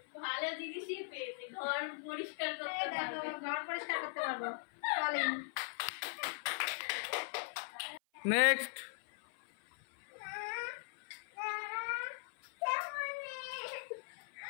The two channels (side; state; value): right; silent; 51 dB below the other